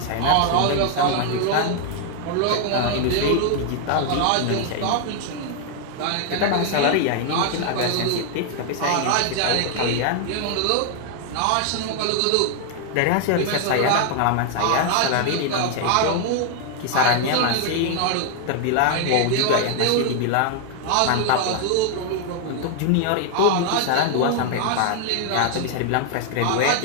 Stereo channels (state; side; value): different; both; correlation 0.00